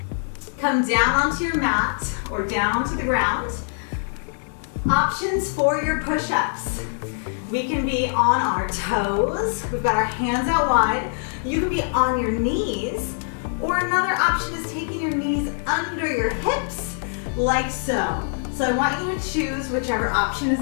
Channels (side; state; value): right; silent; digital silence